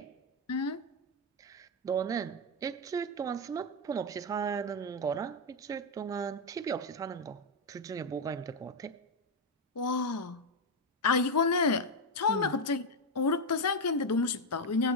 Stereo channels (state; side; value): normal; both; correlation 0.05